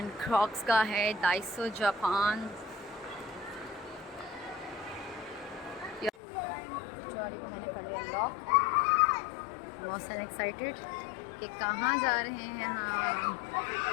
क्रॉक्स का है, डाइसो जापान। ट्रॉली को मैंने कर लिया लॉक। मोहसिन एक्साइटेड कि कहाँ जा रहे हैं हम।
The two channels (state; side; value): drops out; right; at 6.1 s